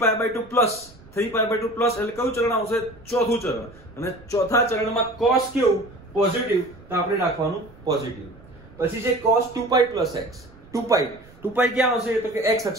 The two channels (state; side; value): noise; right; rumble, 24 dB below the sound